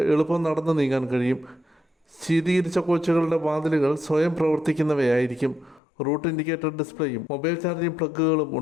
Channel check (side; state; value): right; drops out; at 5.8 s